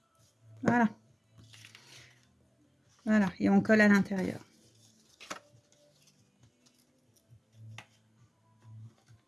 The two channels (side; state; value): both; identical; correlation 1.00